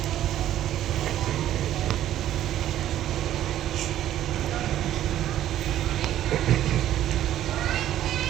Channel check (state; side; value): quieter; left; 12.3 dB